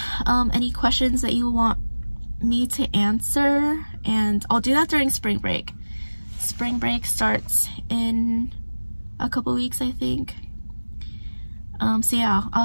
any questions that you want me to answer, and I'll do that during spring break. Spring break starts in a couple weeks, I think. So yeah, I'll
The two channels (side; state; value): both; inverted; correlation -1.00